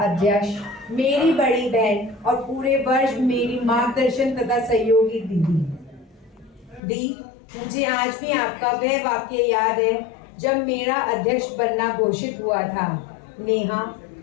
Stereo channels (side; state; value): right; drops out; at 6.8 s